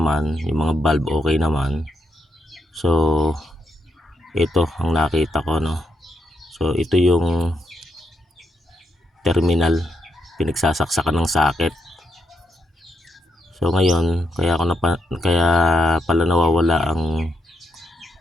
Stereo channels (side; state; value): both; normal; correlation 0.79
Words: yung mga bulb okay naman. So ito ang nakita ko, no. So ito yung terminal, pinagsasaksakan ng socket. So ngayon kaya pala nawawala ang